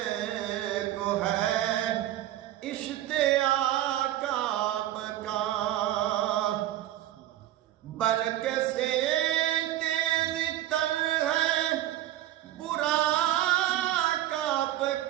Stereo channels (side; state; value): left; quieter; 13.5 dB